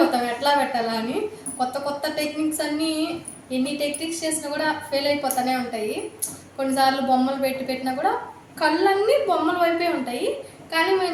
ఎట్లా పెట్టాలా అని. కొత్త కొత్త టెక్నిక్స్ అన్నీ ఎన్ని టెక్నిక్స్ చేసినా కూడా ఫెయిల్ అయిపోతూనే ఉంటాయి. కొన్నిసార్లు బొమ్మలు పెట్టినా కూడా కళ్ళన్నీ బొమ్మల వైపే ఉంటాయి, కానీ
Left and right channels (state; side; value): identical; both; correlation 1.00